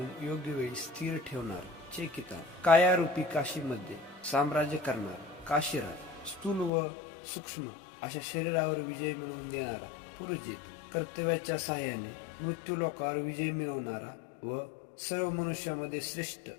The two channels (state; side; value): drops out; right; at 6.7 s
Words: योग्य वेळी स्थिर ठेवणार चेकितान कायारूपी काशीमध्ये साम्राज्य करणारा काशीराज स्थूल व सूक्ष्म अशा शरीरावर विजय मिळवून देणारा पुरजित कर्तव्याच्या सहाय्याने मृत्यूलोकावर विजय मिळवणारा व सर्व मनुष्यामध्ये श्रेष्ठ